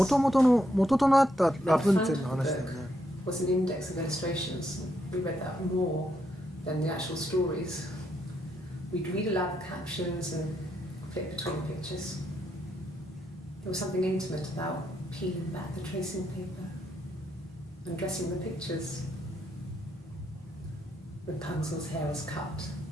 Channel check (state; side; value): normal; both; correlation 0.78